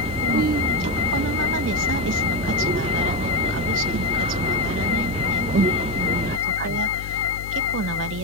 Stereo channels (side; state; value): left; noise; hum, 11 dB below the sound